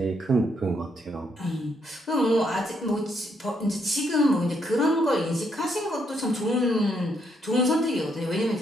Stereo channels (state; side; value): normal; both; correlation 0.74